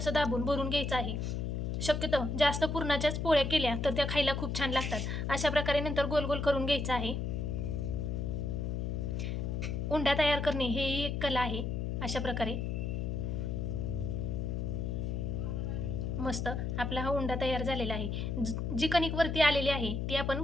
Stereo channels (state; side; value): noise; left; hum, 1 dB below the sound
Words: दाबून भरून घ्यायचं आहे. शक्यतो जास्त पुरणाच्याच पोळ्या केल्या तर त्या खायला खूप छान लागतात. अशा प्रकारे नंतर गोल गोल करून घ्यायचं आहे. उंडा तयार करणे हे एक कला आहे. अशा प्रकारे मस्त आपला हा उंडा तयार झालेला आहे. जी कणिक वरती आलेली आहे ती आपण